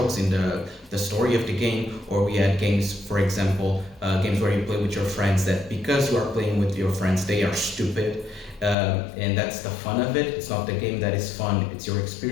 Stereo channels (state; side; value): drops out; right; at 8.8 s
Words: in the story of the game, or we had games, for example, games where you play with your friends that because you are playing with your friends, they are stupid. And that's the fun of it. It's not the game that is fun, it's your